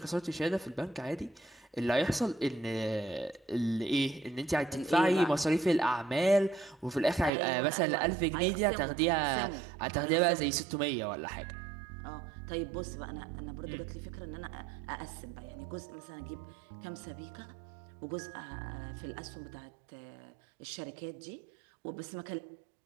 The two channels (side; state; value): left; drops out; at 7.3 s